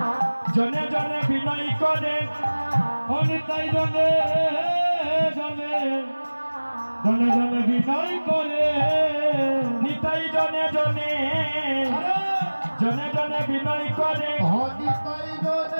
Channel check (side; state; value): both; inverted; correlation -1.00